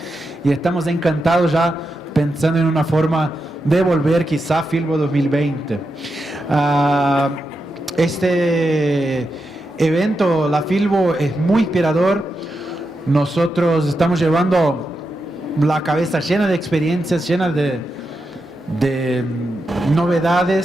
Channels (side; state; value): both; normal; correlation 0.87